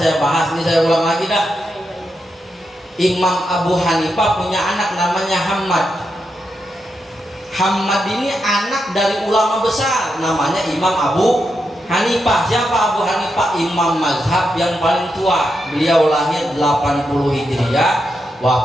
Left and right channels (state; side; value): normal; both; correlation 0.85